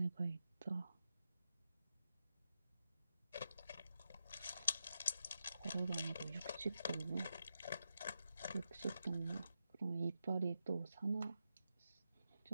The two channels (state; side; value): inverted; both; correlation -0.87